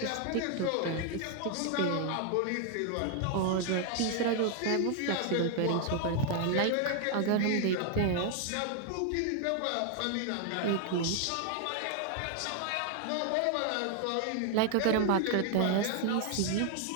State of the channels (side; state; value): both; different; correlation 0.00